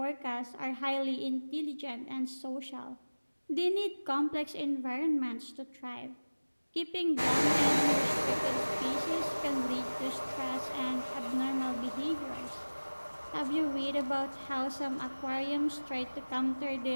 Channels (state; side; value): inverted; both; correlation -1.00